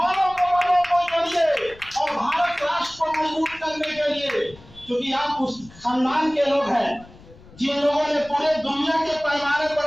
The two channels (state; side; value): noise; left; rumble, 22 dB below the sound